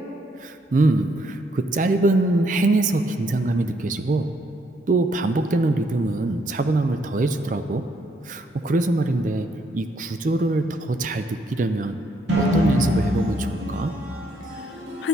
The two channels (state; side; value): normal; both; correlation 0.72